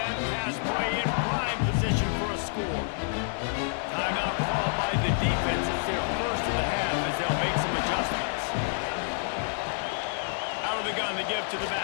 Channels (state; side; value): silent; right; 59 dB below the other